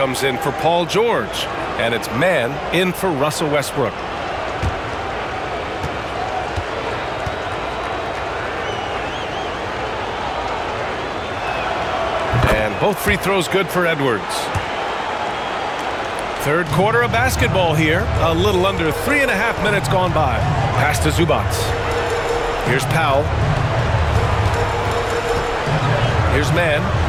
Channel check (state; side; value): identical; both; correlation 1.00